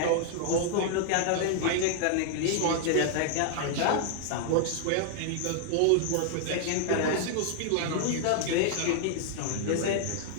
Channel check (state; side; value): different; both; correlation -0.01